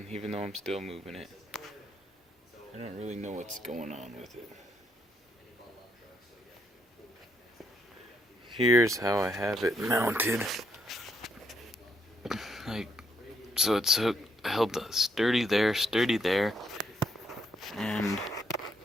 even though I'm still moving it. I don't really know what's going on with it. Here's how I have it mounted. So it's held sturdy there, and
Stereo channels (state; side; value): normal; both; correlation 0.75